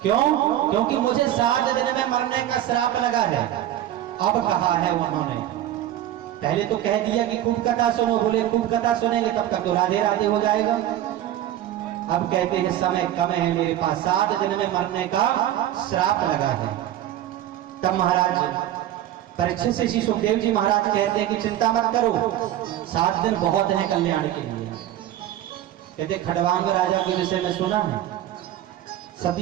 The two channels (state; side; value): quieter; left; 12.5 dB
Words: क्यों? क्योंकि मुझे 7 दिन में मरने का श्राप लगा है। अब कहा है उन्होंने, पहले तो कह दिया कि खूब कथा सुनो, बोले खूब कथा सुनेंगे तब तक तो राधे राधे हो जाएगा। अब कहते हैं समय कम है मेरे पास, 7 दिन में मरने का श्राप लगा है। तब महाराज परीक्षित से श्री सुखदेव जी महाराज कहते हैं कि चिंता मत करो, 7 दिन बहुत है कल्याण के लिए। कहते खड़वांग राजा के विषय में सुना है,